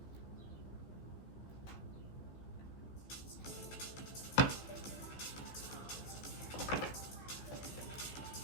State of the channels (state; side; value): late; right; 15 ms